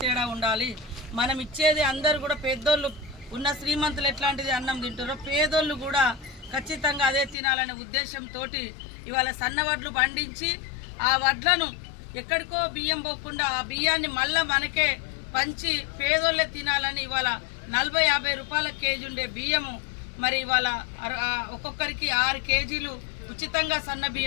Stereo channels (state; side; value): drops out; right; at 7.4 s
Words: తేడా ఉండాలి, మనం ఇచ్చేది అందరూ కూడా పెద్దోళ్ళు ఉన్న శ్రీమంతులు ఎట్లాంటిది అన్నం తింటారో పేదోళ్ళు కూడా ఖచ్చితంగా అదే తినాలనే ఉద్దేశంతో ఇవాళ సన్న వడ్లు పండించి ఆ వడ్లను ఎక్కడికో బియ్యం పోకుండా ఆ బియ్యాన్ని మళ్ళీ మనకే పంచి పేదోళ్ళే తినాలని ఇవాళ 40-50 రూపాయల కేజీ ఉండే బియ్యము మరి ఇవాళ ఒక్కొక్కరికి 6 కేజీలు ఉచితంగా సన్న